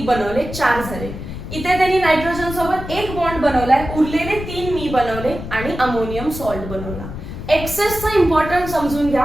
बनवले, 4 झाले. इथे त्यांनी नायट्रोजन सोबत 1 बॉन्ड बनवलाय, उरलेले 3 मी बनवले आणि अमोनियम सॉल्ट बनवला. एक्सेसचा इम्पॉर्टन्स समजून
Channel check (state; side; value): noise; left; rumble, 9 dB below the sound